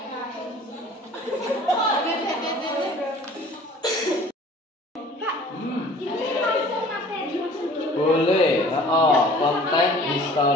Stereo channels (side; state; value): both; normal; correlation 0.49